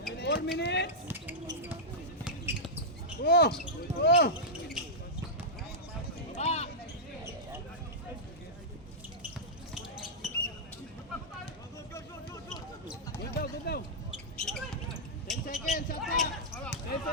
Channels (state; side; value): normal; both; correlation -0.09